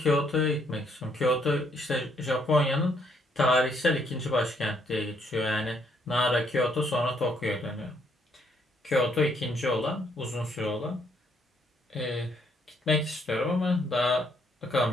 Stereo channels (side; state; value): both; normal; correlation 0.70